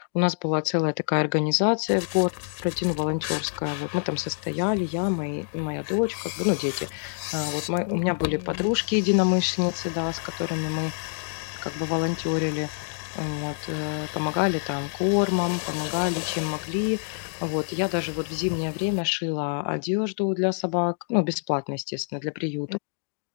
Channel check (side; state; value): right; silent; digital silence